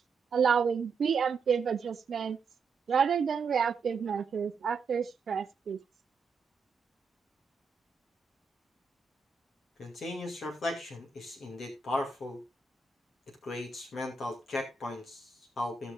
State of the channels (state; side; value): quieter; left; 5.0 dB